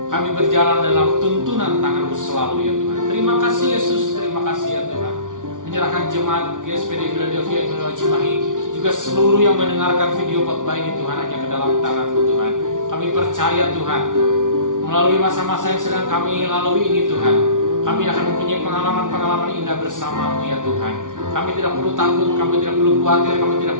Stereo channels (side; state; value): left; late; 0.88 ms